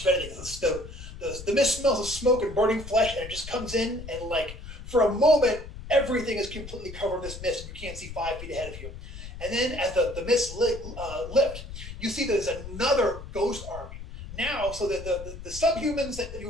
of anything. The mist smells of smoke and burning flesh, and it just comes in, and for a moment everything is completely covered in this mist, and you can't see 5 feet ahead of you. And then as the mist lift, you see there's another ghost army now. So the subhumans that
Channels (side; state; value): left; noise; rumble, 12 dB below the sound